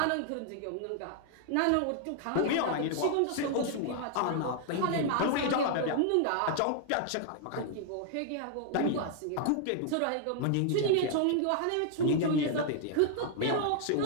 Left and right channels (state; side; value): different; both; correlation 0.00